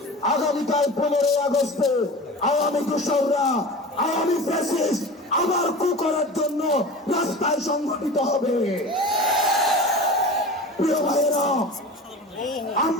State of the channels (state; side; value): normal; both; correlation 0.34